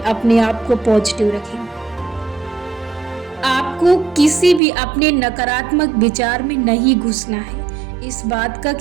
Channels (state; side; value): drops out; left; at 4.6 s